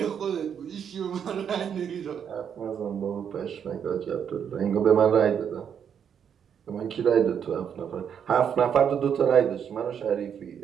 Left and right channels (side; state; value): left; quieter; 8.0 dB